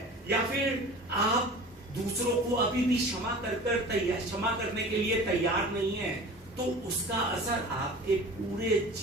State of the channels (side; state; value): both; normal; correlation 0.39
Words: या फिर आप दूसरों को अभी भी क्षमा करने के लिए तैयार नहीं है, तो उसका असर आपके पूरे